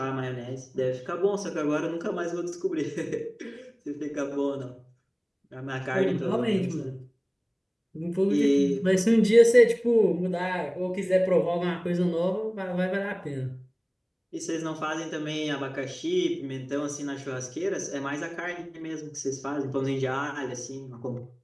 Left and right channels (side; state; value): both; identical; correlation 1.00